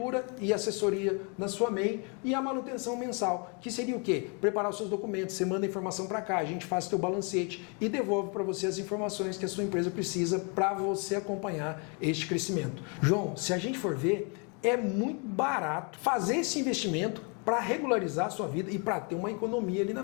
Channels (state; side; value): quieter; right; 35.3 dB